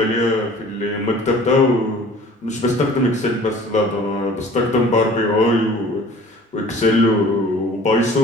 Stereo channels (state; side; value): normal; both; correlation 0.48